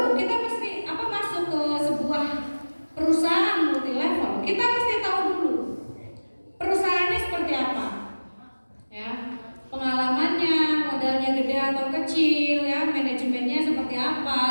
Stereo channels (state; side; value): inverted; both; correlation -1.00